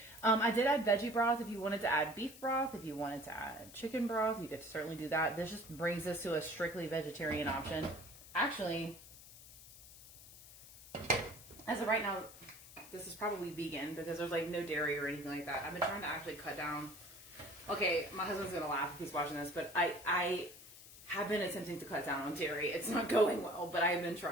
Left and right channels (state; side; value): noise; left; hiss, 18 dB below the sound